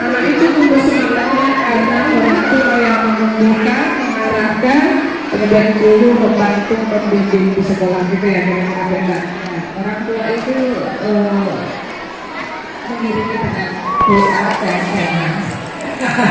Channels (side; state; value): both; identical; correlation 1.00